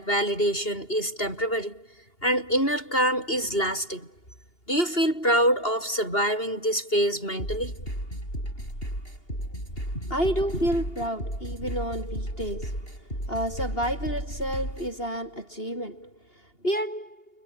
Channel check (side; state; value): right; late; 2.8 ms